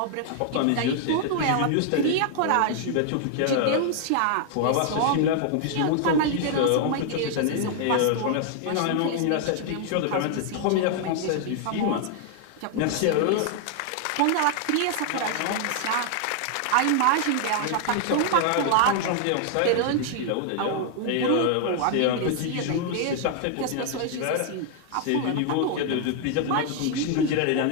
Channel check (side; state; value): both; different; correlation 0.00